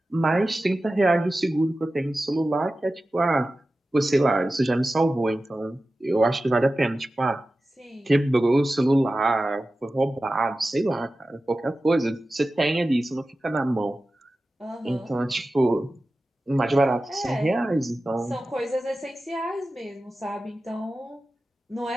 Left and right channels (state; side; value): normal; both; correlation 0.95